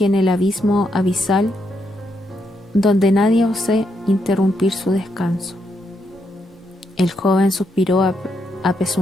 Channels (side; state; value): both; normal; correlation 0.79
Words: en el abismo abisal, donde nadie ose interrumpir su descanso. El joven suspiró